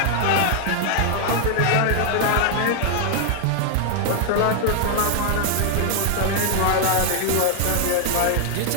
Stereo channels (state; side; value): different; both; correlation 0.00